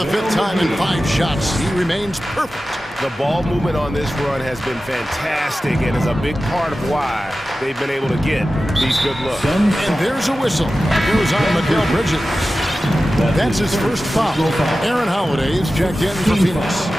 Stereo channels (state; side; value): normal; both; correlation 0.94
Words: 5th time in 5 shots. He remains perfect. The ball movement on this run has been fantastic and is a big part of why they've been able to get these good looks. And there's a whistle. Goes on Mikal Bridges. That's his first foul. Aaron Holiday is checked in for Phoenix.